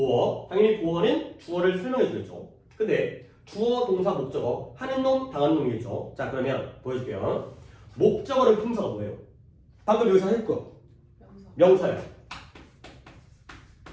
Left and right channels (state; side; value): identical; both; correlation 1.00